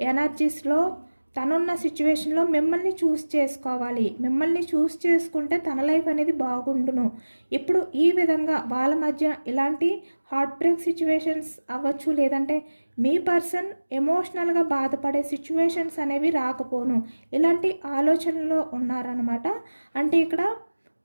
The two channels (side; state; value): both; inverted; correlation -1.00